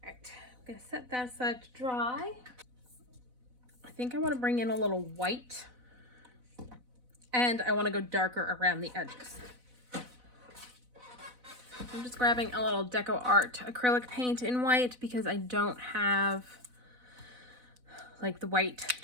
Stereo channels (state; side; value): late; left; 4.0 ms